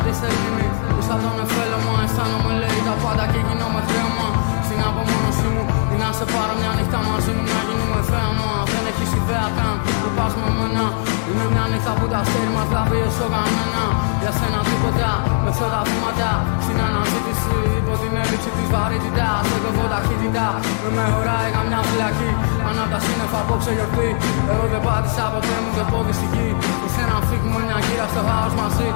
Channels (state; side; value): silent; right; digital silence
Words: τη σελήνη που σαν τον εφέλωμα. Αισθάνομαι λέει τα πάντα και γίνομαι χρέωμα. Στην απομόνωσή μου ή να σε πάρω μια νύχτα μαζί μου να γίνουμε θέαμα. Δεν έχεις ιδέα καν που πας με μένα. Είναι μια νύχτα που τα αστέρι μας λάβει όσο κανένα. Για σένα τίποτα με αυτά τα βήματα. Στην αναζήτηση υπό την έλλειψη της βαρύτητας. Εγώ έχω ταχύτητα με χωράει καμιά φυλακή. Ανά τα σύννεφα απόψε γιορτή. Εγώ δεν πάτησα ποτέ μου και πόδι στη γη. Ήρθε να φύγουμε μια γύρα στο χάος μαζί.